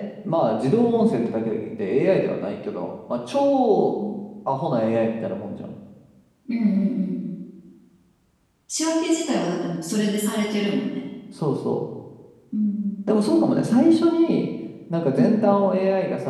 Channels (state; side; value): identical; both; correlation 1.00